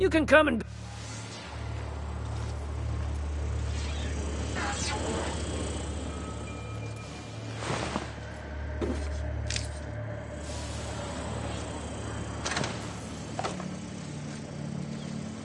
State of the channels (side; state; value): both; identical; correlation 1.00